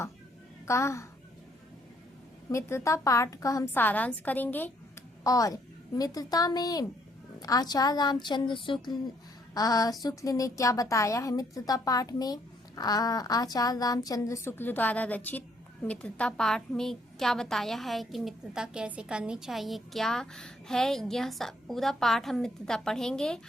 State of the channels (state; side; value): normal; both; correlation 0.68